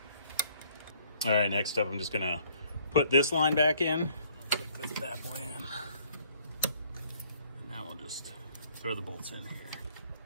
All right, next up I'm just gonna put this line back in, click this bad boy in, and now we'll just throw the bolts in here.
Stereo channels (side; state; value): both; inverted; correlation -0.61